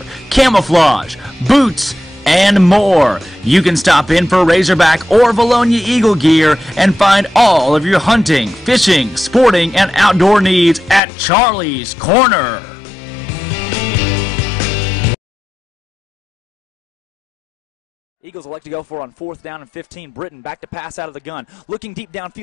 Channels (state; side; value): drops out; right; at 11.0 s